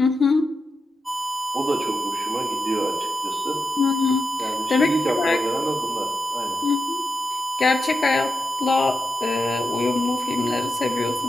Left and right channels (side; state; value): both; normal; correlation 0.88